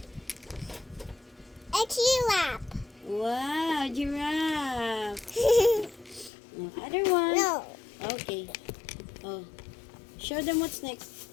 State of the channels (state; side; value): drops out; right; at 6.3 s